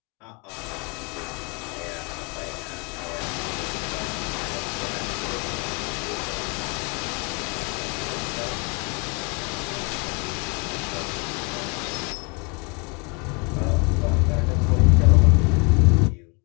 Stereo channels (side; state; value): right; quieter; 31.4 dB